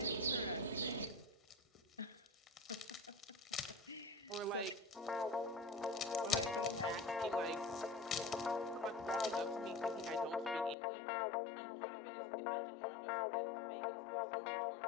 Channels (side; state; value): right; drops out; at 10.8 s